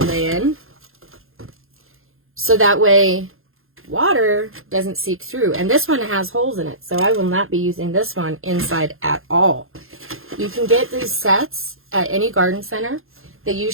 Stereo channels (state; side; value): late; left; 0.61 ms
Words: lay in. So that way water doesn't seep through. And this one has holes in it, so I will not be using this one inside at all. You can get these sets at any garden center. They